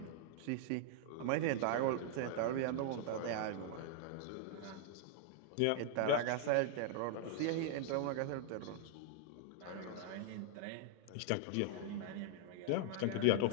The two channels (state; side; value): different; both; correlation -0.01